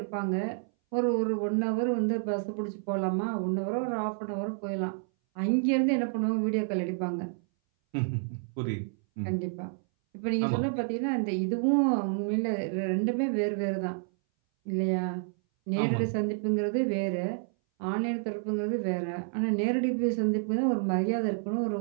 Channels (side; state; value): left; silent; 58 dB below the other